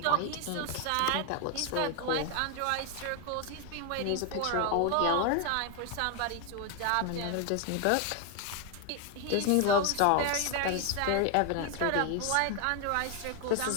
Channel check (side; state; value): both; different; correlation 0.01